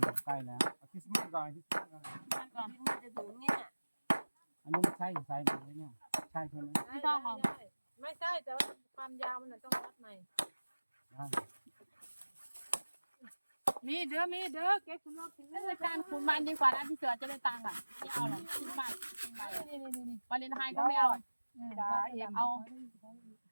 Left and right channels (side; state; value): both; inverted; correlation -1.00